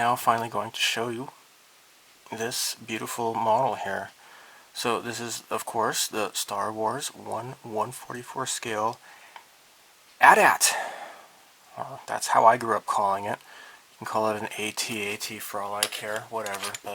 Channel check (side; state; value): both; identical; correlation 1.00